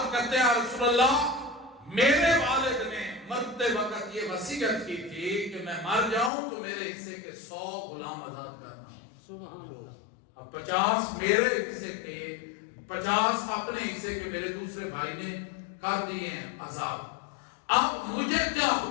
کرتے ہیں رسول اللہ میرے والد نے مرتے وقت یہ وصیت کی تھی کہ میں مر جاؤں تو میرے حصے کے 100 غلام آزاد کرنا۔ سبحان اللہ۔ اب 50 میرے حصے کے، 50 اپنے حصے کے میرے دوسرے بھائی نے کر دیے ہیں آزاد۔ اب مجھے کیا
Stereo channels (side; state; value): right; drops out; at 6.3 s